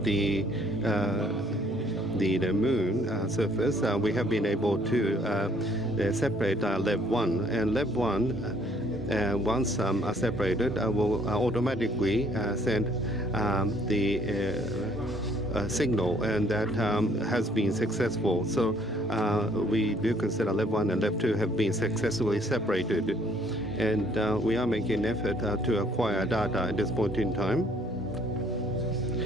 the moon surface, we have been able to separate Lab 1. And Lab 1, once separated, will automatically send the signal, and that has been successful. So we do consider Lab 1 and Lab 2 have been successfully separated. And we are making an effort to acquire data at this point in time.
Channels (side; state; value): both; normal; correlation 0.63